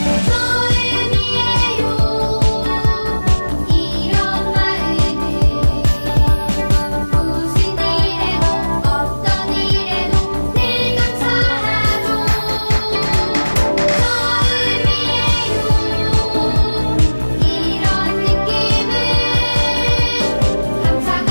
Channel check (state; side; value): inverted; both; correlation -1.00